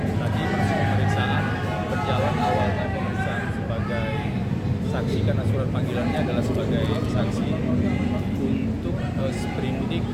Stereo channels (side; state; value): both; identical; correlation 1.00